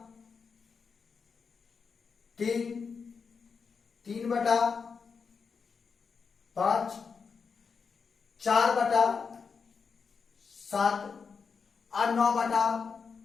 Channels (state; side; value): quieter; right; 5.6 dB